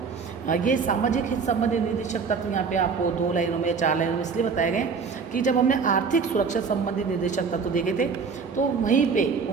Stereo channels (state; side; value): quieter; left; 5.4 dB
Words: ये सामाजिक हित संबंधी निर्देशक तत्व यहाँ पे आपको 2 लाइनों में या 4 लाइनों में इसलिए बताए गए कि जब हमने आर्थिक सुरक्षा संबंधी निर्देशक तत्व देखे थे तो वहीं पे